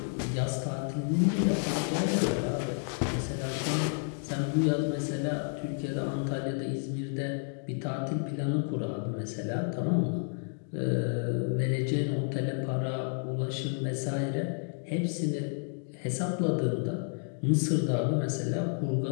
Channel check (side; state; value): right; silent; 57 dB below the other